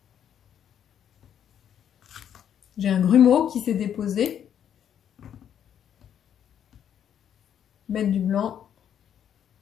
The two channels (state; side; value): quieter; right; 9.3 dB